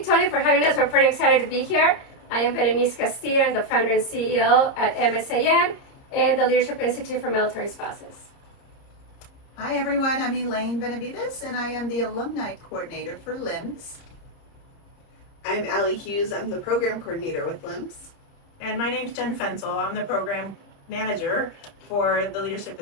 for having us. We're pretty excited to be here. I am Berenice Castillo. I'm the founder and CEO at MSAN and the Leadership Institute for Military Spouses. Hi everyone, I'm Elaine Benavides and I am the Alumni Coordinator for LIMS. I'm Allie Hughes. I'm the Program Coordinator with LIMS. And my name's Jen Fensel. I'm the Program Manager for the Leadership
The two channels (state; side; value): late; right; 30 ms